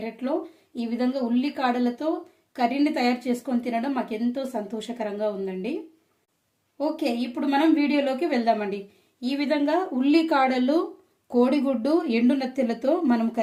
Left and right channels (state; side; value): identical; both; correlation 1.00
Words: ఈ విధంగా ఉల్లికాడలతో కర్రీని తయారు చేసుకొని తినడం మాకు ఎంతో సంతోషకరంగా ఉందండి. ఓకే, ఇప్పుడు మనం వీడియోలోకి వెళ్దామండి. ఈ విధంగా ఉల్లికాడలు, కోడిగుడ్డు, ఎండు నెత్తెలతో మనం